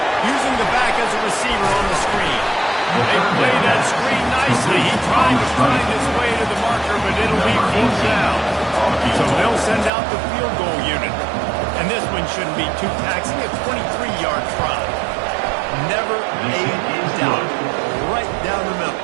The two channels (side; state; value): left; drops out; at 9.9 s